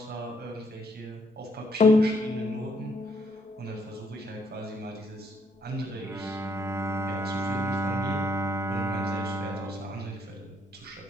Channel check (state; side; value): normal; both; correlation 0.70